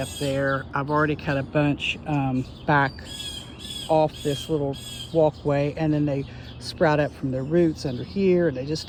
up there. I've already cut a bunch back off this little walkway, and then they sprout up from their roots under here, and they just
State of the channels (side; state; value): both; identical; correlation 1.00